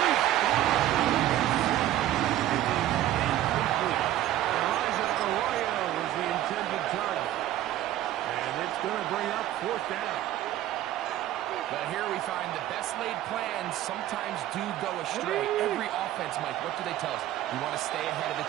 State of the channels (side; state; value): left; quieter; 13.4 dB